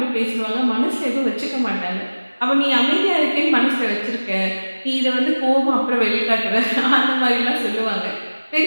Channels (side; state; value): both; inverted; correlation -1.00